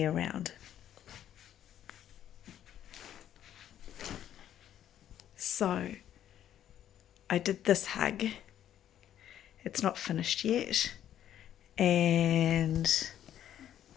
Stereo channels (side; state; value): right; quieter; 10.9 dB